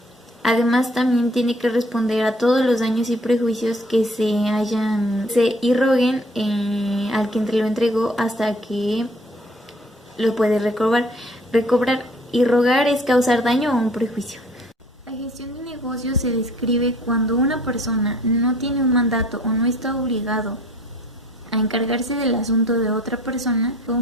Además, también tiene que responder a todos los daños y prejuicios que se irroguen al que lo entregó hasta que lo puede recobrar. Irrogar es causar daño o un prejuicio. La gestión de negocios se describe cuando una persona no tiene un mandato o no está obligado a encargarse del asunto de otra persona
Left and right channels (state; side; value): normal; both; correlation 0.55